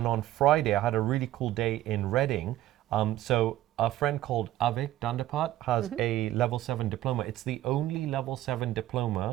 on Friday, I had a really cool day in Reading. So a friend called Avik Dandapat has a level 7 diploma. It's the only level 7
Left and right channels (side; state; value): left; quieter; 14.2 dB